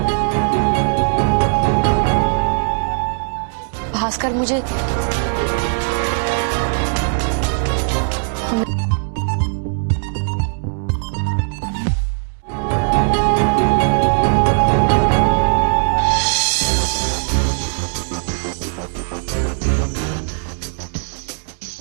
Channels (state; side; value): silent; left; digital silence